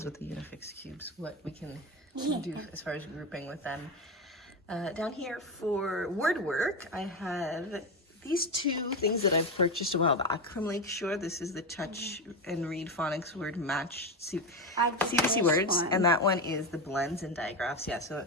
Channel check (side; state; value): both; normal; correlation 0.15